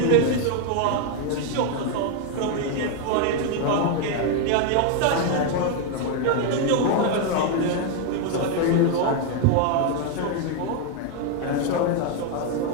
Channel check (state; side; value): different; both; correlation 0.01